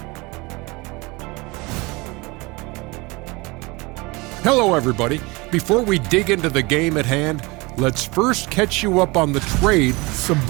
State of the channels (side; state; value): left; quieter; 24.8 dB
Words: Hello, everybody. Before we dig into the game at hand, let's first catch you up on the trade.